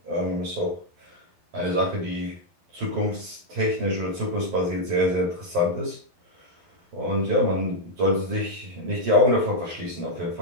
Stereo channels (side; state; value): left; late; 12 ms